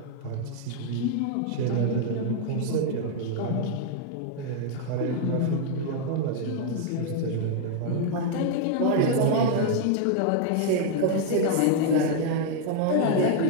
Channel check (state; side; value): different; both; correlation 0.00